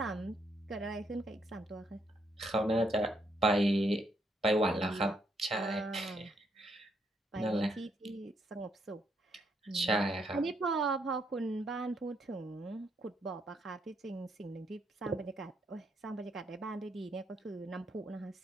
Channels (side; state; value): both; normal; correlation 0.75